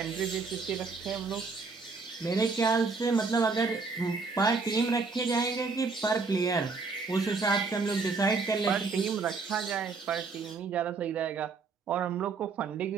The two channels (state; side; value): quieter; left; 4.4 dB